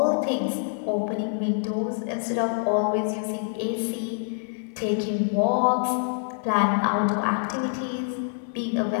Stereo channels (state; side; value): silent; right; digital silence